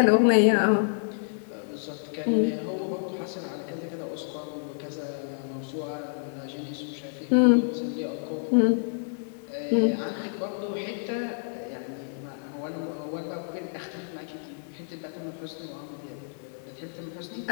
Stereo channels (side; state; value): right; silent; 59 dB below the other